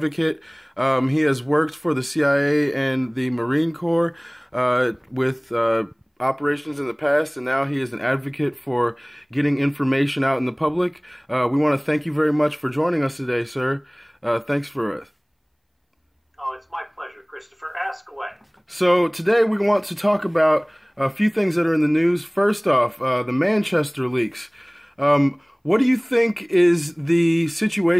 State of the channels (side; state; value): both; identical; correlation 1.00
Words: He has worked for the CIA and the Marine Corps with operations in the past, and now he is an advocate for getting information out in the public. We want to thank you very much for joining us today, sir. Thanks for Oh, it's my pleasure, Christopher. Ask away. So today we want to talk about a few things that are in the news. First off, the Manchester leaks. What do you think is the